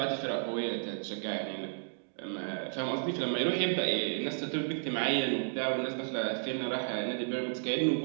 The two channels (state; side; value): silent; left; digital silence